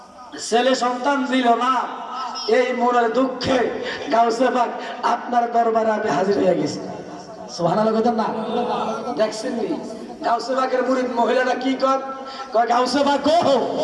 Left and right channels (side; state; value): both; identical; correlation 1.00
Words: ছেলে সন্তান দিল না এই মনের দুঃখে গাউসে বাগ আপনার দরবারে আমি হাজির হয়ে গেছি সুবহানাল্লাহ কইতেন না দেখছেন নি গাউসে বাগের মুরিদ মহিলাটা কি কয় গাউসে বাগ গো